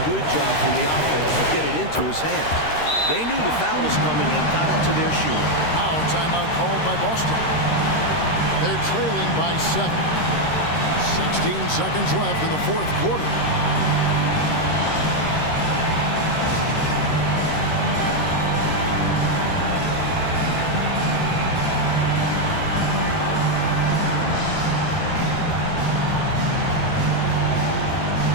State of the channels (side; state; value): right; late; 13 ms